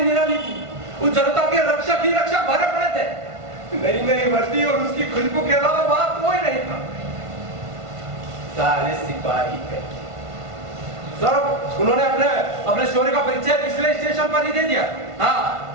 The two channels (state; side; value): late; left; 1.5 ms